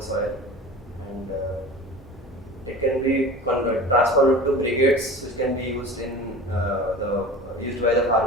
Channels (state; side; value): normal; both; correlation 0.36